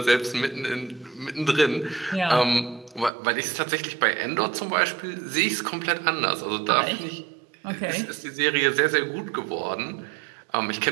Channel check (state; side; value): drops out; left; at 3.1 s